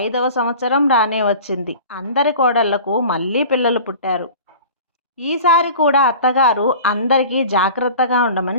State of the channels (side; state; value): both; inverted; correlation -0.40